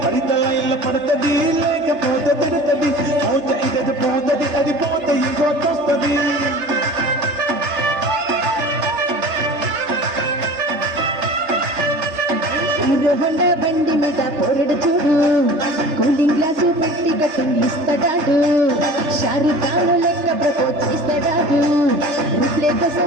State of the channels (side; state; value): left; late; 3.3 ms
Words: పరితల ఇళ్ళ పడుతుంది లేకపోతే తిడుతుంది పోతే ఇది పోతుంది అది పోతే ఇంకోతొస్తుంది హీరో హోండా బండి మీద పోరడు చూడు కూలింగ్ గ్లాసు పెట్టి కటింగ్ ఇస్తాడాడు షారుఖ్ ఖాన్ లెక్క ప్రపోజ్ చేస్తాడాడు రిప్లే